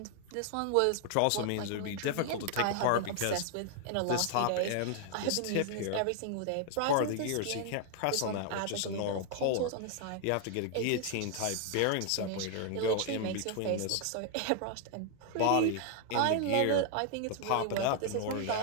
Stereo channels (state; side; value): different; both; correlation 0.00